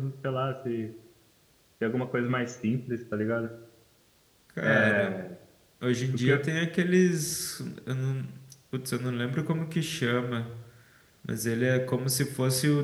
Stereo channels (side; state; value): both; identical; correlation 1.00